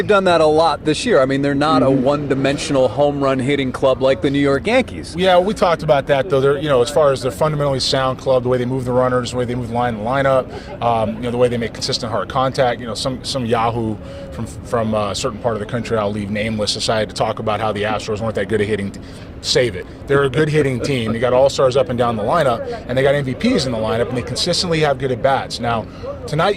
done that a lot this year. I mean, they're not a one-dimensional home run hitting club like the New York Yankees. Yeah, we talked about that though. They're, as far as their fundamentally sound club, the way they move the runners, the way they move the lineup, the way they make consistent hard contact. Some Yahoo from a certain part of the country, I'll leave nameless, decided to talk about how the Astros weren't that good at hitting. Save it. They're a good hitting team. They got all-stars up and down the lineup, and they got MVPs in the lineup, and they consistently have good at-bats. Now, tonight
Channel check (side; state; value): both; identical; correlation 1.00